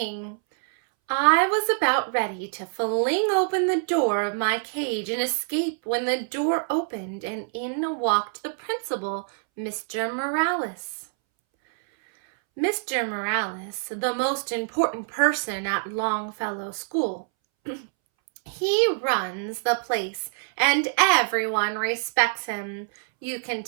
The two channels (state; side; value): silent; left; 61 dB below the other